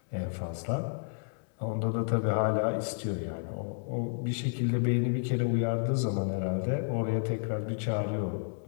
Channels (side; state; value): right; silent; 57 dB below the other